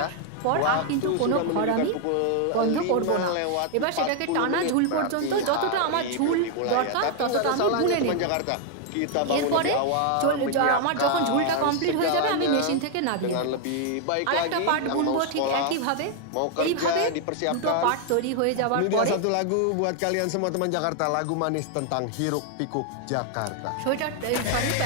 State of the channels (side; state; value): both; different; correlation 0.00